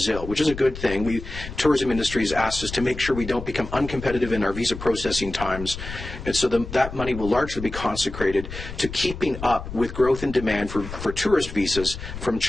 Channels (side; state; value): left; noise; rumble, 10 dB below the sound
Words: which is a good thing. Tourism industry has asked us to make sure we don't become uncompetitive in our visa processing times, and so that money will largely be consecrated to keeping up with growth in demand for tourist visas from